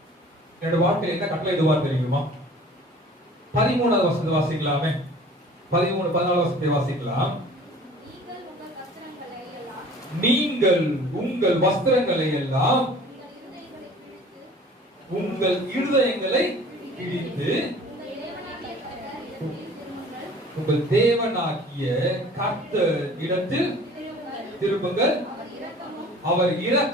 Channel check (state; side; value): normal; both; correlation 0.47